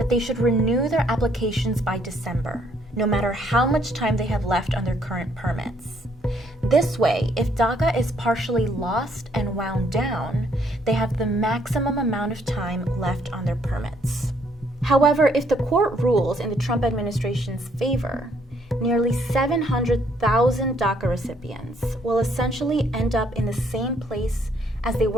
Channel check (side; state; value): both; normal; correlation 0.67